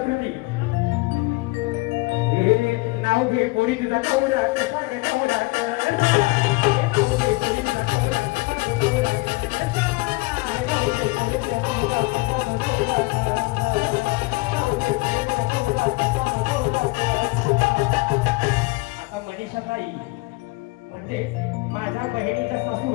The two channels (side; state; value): right; quieter; 23.7 dB